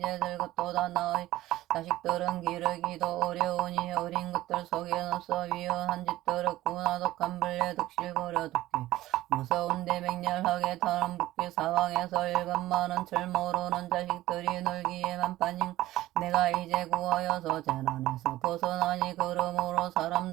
늙었도다. 나의 자식들은 기르기도 어려우니 어린 것들 속엔 없어 위험한 짓들 없구나. 독한 벌레 득실거려 독기 무서운데 맹렬하게 타는 붓기 사방에서 일감 많은 철 모르는 자식들이 놀기에만 빠진 내가 이제 구하여서 재난에서 벗어나니 그러므로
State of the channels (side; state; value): left; quieter; 15.8 dB